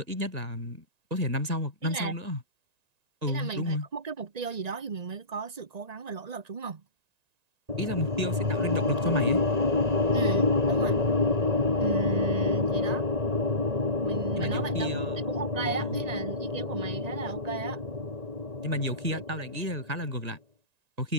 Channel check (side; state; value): left; late; 1.9 ms